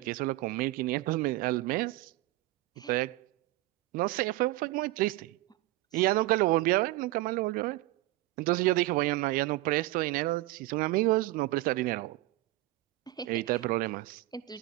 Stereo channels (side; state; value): left; quieter; 18.6 dB